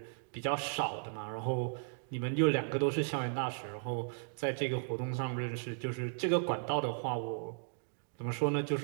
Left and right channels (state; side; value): silent; left; digital silence